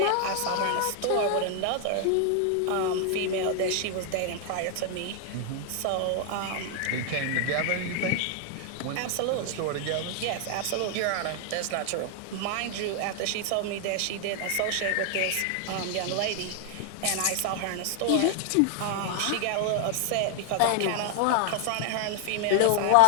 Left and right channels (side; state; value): both; different; correlation 0.00